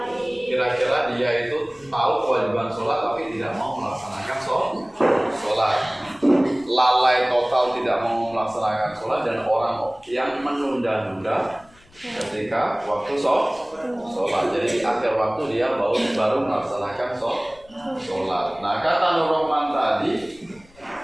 kira-kira dia itu tahu kewajiban sholat tapi tidak mau melaksanakan sholat. Lalai total tidak mau melaksanakan sholat, dan orang yang menunda-nunda ketika waktu sholat. Jadi di akhir waktu dia baru melaksanakan sholat. Nah, kata Nur Rahman tadi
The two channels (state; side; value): noise; left; rumble, 28 dB below the sound